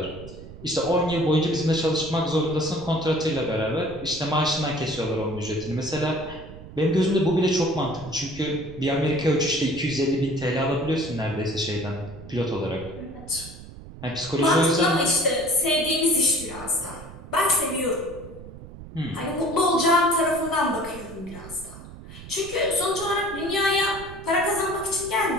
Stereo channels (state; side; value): noise; right; rumble, 15 dB below the sound